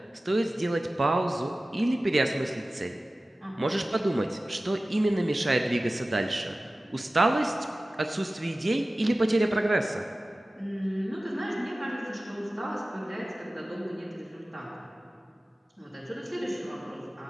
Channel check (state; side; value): normal; both; correlation 0.96